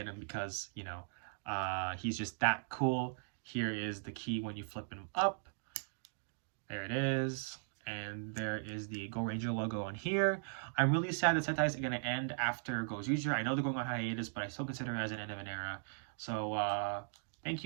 him because, you know, he's just that cool. Here is the key when you flip him up. There it is. And there is the Go Ranger logo on here. I'm really sad that Sentai is going to end after Go Ranger. I know they're going on hiatus, but I still consider it as an end of an era. So, thank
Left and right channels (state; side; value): silent; left; digital silence